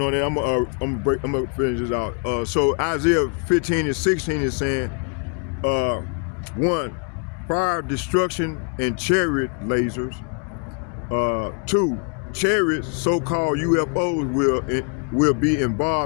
on it, I'm gonna finish this out. So Isaiah 15 and 16 is saying, 1, fire, destruction, and chariot lasers. 2, chariots, so-called UFOs, will be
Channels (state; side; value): quieter; right; 35.7 dB